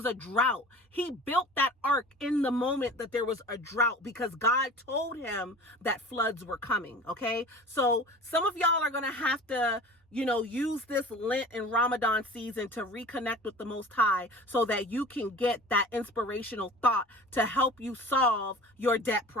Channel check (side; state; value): both; normal; correlation 0.40